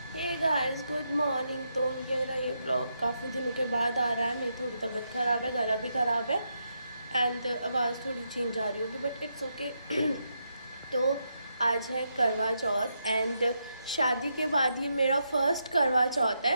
guys, good morning. तो मेरा ये ब्लॉग काफ़ी दिनों के बाद आ रहा है। मेरी थोड़ी तबीयत ख़राब है, गला भी ख़राब है एंड आवाज़ थोड़ी चेंज आ रही होगी, बट इट्स ओके। तो आज है करवा चौथ एंड शादी के बाद ये मेरा फर्स्ट करवा चौथ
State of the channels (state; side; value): inverted; both; correlation -0.82